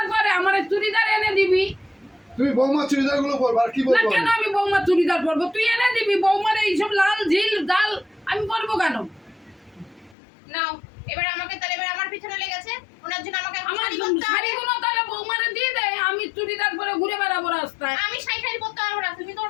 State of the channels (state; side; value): drops out; right; at 10.2 s